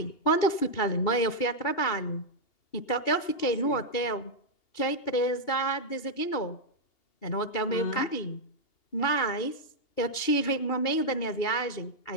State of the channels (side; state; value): right; late; 2.8 ms